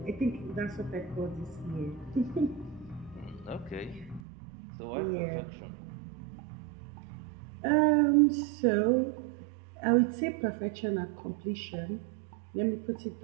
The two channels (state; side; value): drops out; left; at 4.2 s